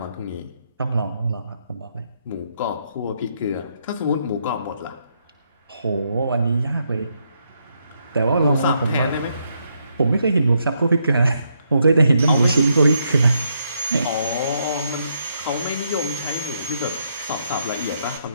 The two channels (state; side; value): inverted; both; correlation -0.77